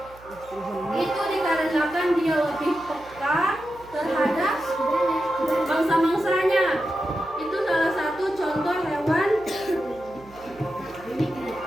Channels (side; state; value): right; noise; hum, 23 dB below the sound